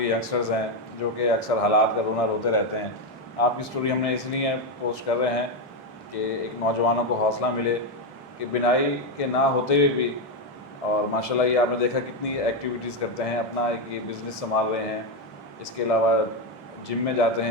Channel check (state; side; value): normal; both; correlation 0.07